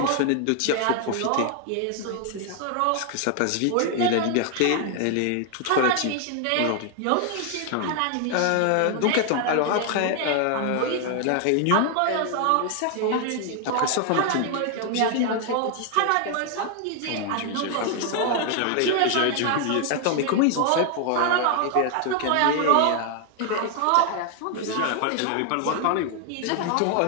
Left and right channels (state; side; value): different; both; correlation 0.00